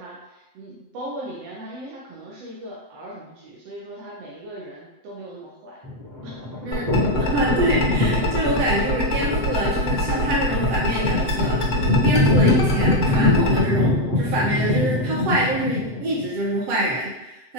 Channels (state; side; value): late; left; 7.8 ms